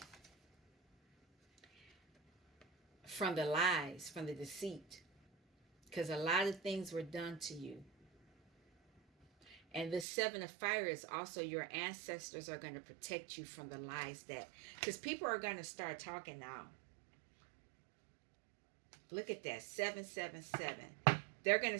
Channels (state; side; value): drops out; left; at 10.1 s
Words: from the lies, from the deceit, because a lot of things were done to you. And the seven of fire is also your ancestors are going to protect you from the lies that, because people are going to start talking now. Look at that, 777. They're going to